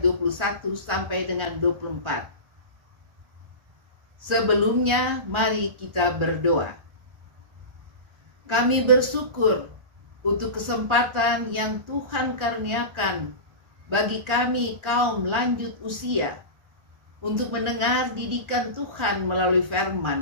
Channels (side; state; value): left; late; 1.4 ms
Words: sampai dengan 24. Sebelumnya, mari kita berdoa. Kami bersyukur untuk kesempatan yang Tuhan karuniakan bagi kami kaum lanjut usia untuk mendengar didikan Tuhan melalui